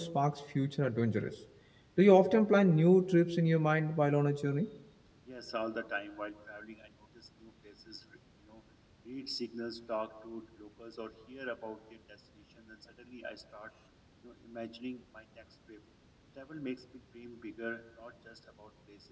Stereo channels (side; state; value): both; identical; correlation 1.00